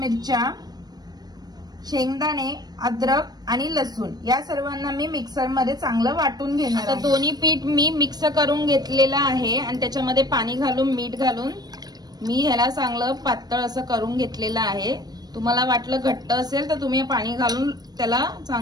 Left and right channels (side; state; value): left; late; 0.19 ms